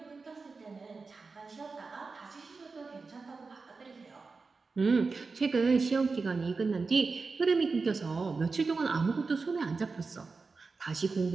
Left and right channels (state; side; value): quieter; left; 4.3 dB